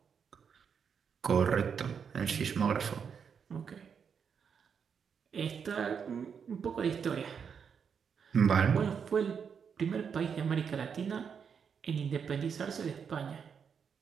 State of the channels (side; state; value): left; quieter; 6.8 dB